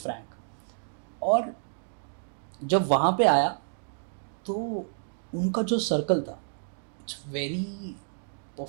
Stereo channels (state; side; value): silent; left; 58 dB below the other